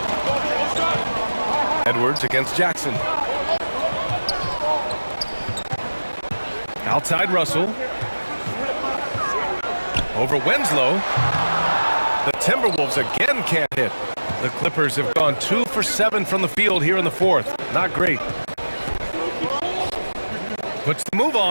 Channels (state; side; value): inverted; both; correlation -1.00